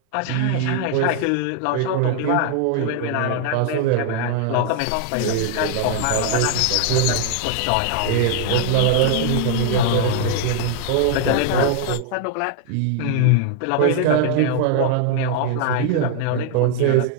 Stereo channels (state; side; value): different; both; correlation 0.00